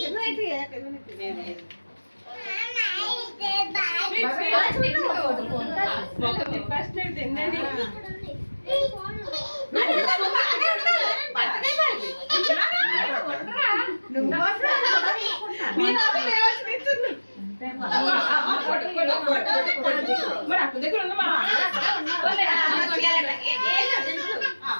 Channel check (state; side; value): inverted; both; correlation -1.00